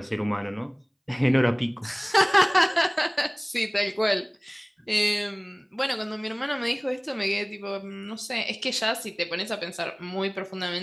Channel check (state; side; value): identical; both; correlation 1.00